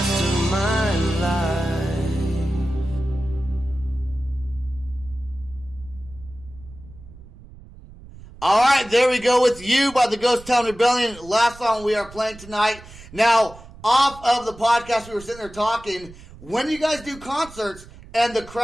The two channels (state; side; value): noise; right; rumble, 19 dB below the sound